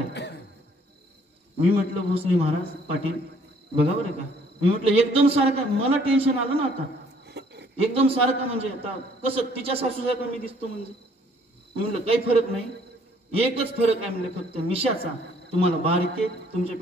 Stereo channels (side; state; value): both; normal; correlation 0.61